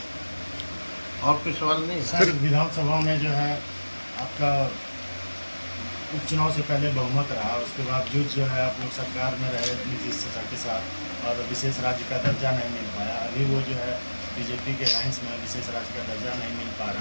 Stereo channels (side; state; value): both; inverted; correlation -1.00